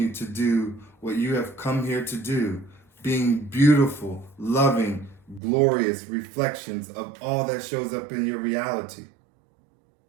to do what you have come here to do, being beautiful, loving, glorious reflections of all that shows up in your reality.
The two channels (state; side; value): drops out; left; at 5.4 s